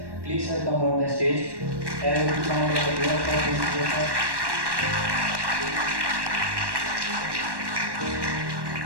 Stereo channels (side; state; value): left; late; 1.1 ms